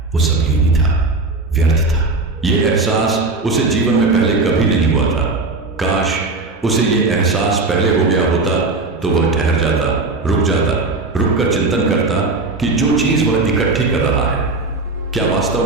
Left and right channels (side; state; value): left; quieter; 3.5 dB